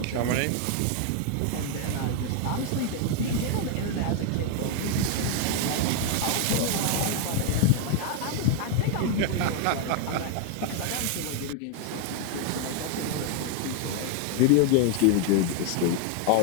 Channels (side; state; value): both; different; correlation 0.00